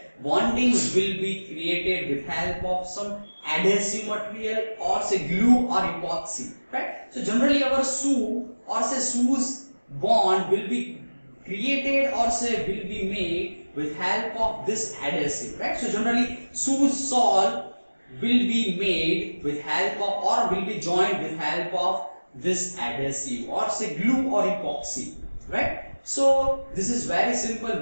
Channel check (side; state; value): both; inverted; correlation -1.00